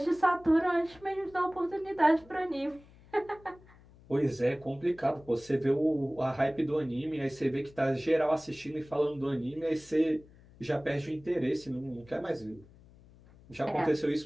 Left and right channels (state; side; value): noise; left; hum, 24 dB below the sound